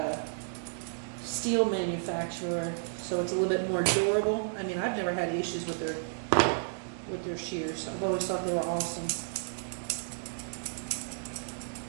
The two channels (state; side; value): silent; left; digital silence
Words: steel manufacturer, so it's a little bit more durable. I mean, I've never had issues with their shears. I've always thought they were awesome.